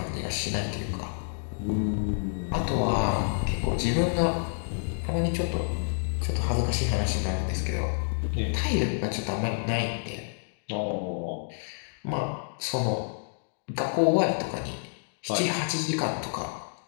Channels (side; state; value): right; silent; digital silence